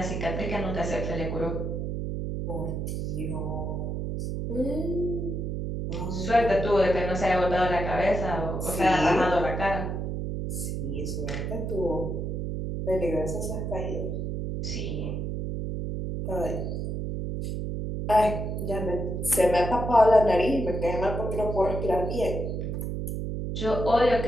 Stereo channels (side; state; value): right; noise; hum, 3 dB below the sound